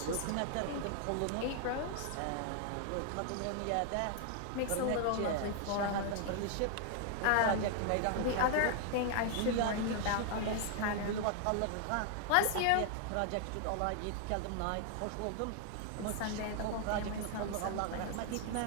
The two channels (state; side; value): different; both; correlation 0.00